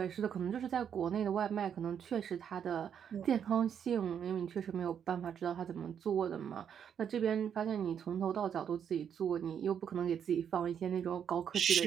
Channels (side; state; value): left; quieter; 8.2 dB